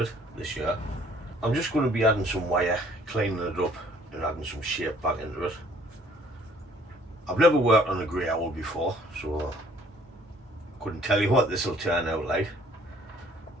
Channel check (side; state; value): both; normal; correlation 0.59